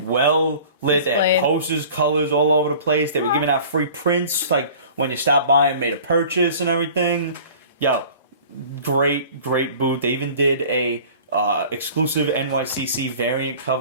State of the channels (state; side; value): inverted; both; correlation -0.45